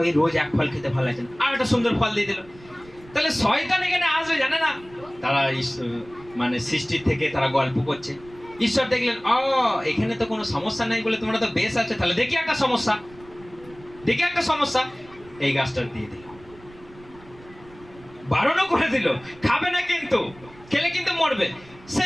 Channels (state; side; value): noise; right; rumble, 23 dB below the sound